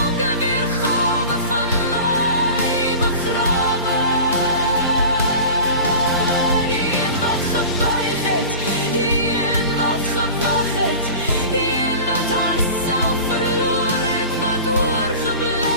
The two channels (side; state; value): both; inverted; correlation -0.35